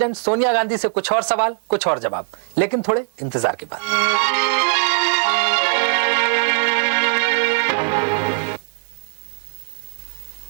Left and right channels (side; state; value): left; silent; digital silence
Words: सोनिया गांधी से कुछ और सवाल, कुछ और जवाब, लेकिन थोड़े इंतजार के बाद।